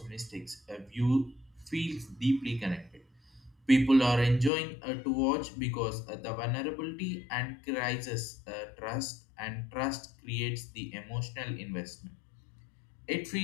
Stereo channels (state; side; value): drops out; right; at 4.5 s